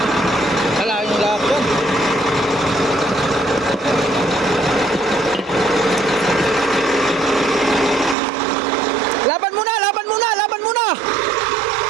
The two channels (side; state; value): left; drops out; at 8.2 s